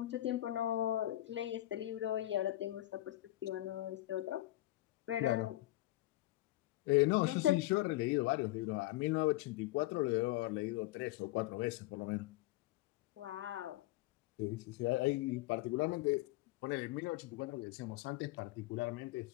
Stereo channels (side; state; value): right; quieter; 16.7 dB